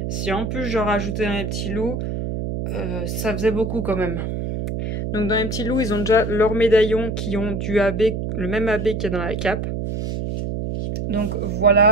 Si en plus j'en rajoutais un petit loup, ça faisait beaucoup quand même. Donc dans les petits loups, ils ont déjà leurs médaillons qui ont du AB, le même AB qu'il y a dans la cape. Donc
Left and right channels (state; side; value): noise; right; hum, 3 dB below the sound